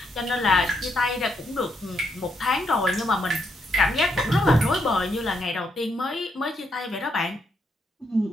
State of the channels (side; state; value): both; normal; correlation 0.78